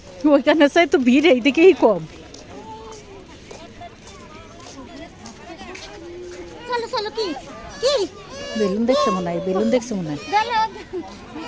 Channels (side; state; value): both; identical; correlation 1.00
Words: ওইখানে চাই তো ভিড় এইদিকেই কম। চলো চলো, কি কি বেলুন দেখছে মনে হয়, বেলুন দেখছে মনে হয়। গেলো